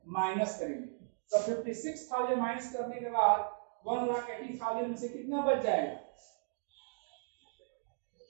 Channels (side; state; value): left; silent; digital silence